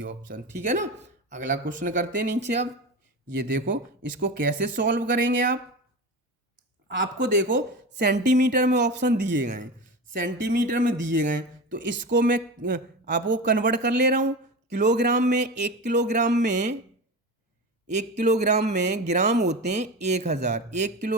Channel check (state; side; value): normal; both; correlation 0.26